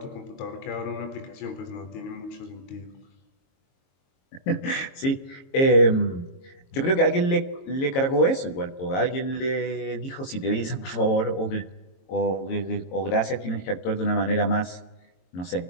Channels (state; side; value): late; right; 22 ms